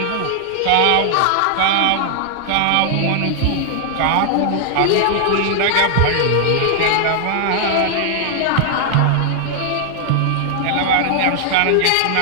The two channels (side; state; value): both; different; correlation 0.00